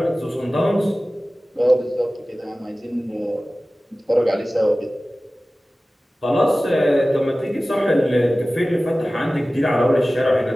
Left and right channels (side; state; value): both; normal; correlation 0.97